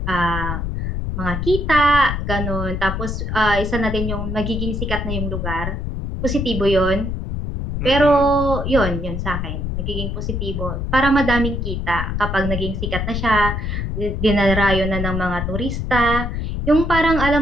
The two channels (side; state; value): left; noise; rumble, 3 dB below the sound